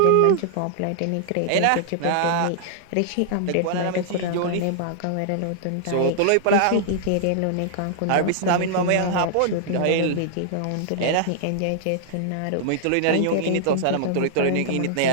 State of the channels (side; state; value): both; different; correlation -0.01